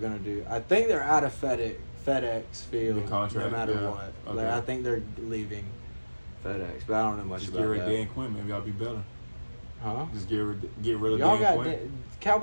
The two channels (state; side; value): inverted; both; correlation -1.00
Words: do. I think they're out of FedEx Field. The contract, no matter yeah. what. Okay. Like, I think they're leaving FedEx, but I don't know much Just get about rid of that. Dan Quinn. Maybe I'll be better. Huh? Just get rid of Y'all Dan got Quinn.